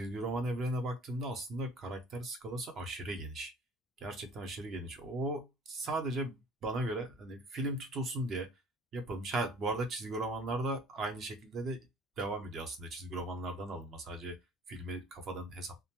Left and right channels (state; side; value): normal; both; correlation 0.50